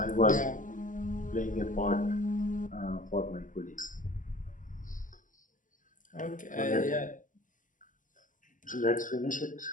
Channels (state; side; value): late; right; 0.38 ms